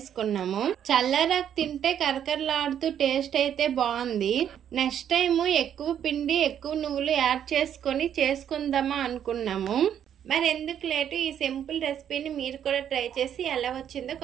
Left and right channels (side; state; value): left; quieter; 9.5 dB